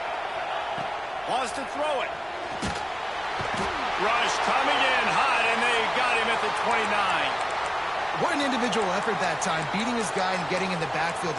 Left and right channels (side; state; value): right; noise; rumble, 26 dB below the sound